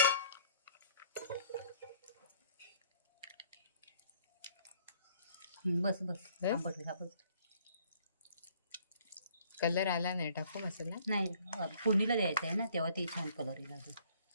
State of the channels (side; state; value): both; inverted; correlation -0.59